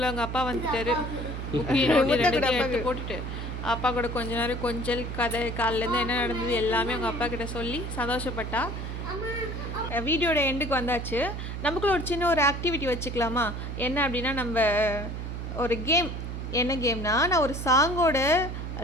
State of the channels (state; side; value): noise; right; hum, 6 dB below the sound